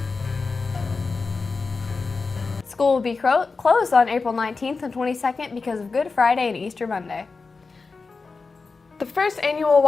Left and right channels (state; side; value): quieter; right; 4.3 dB